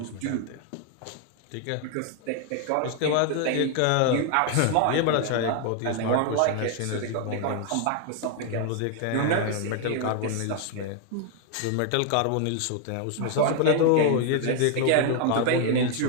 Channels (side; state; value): both; different; correlation 0.00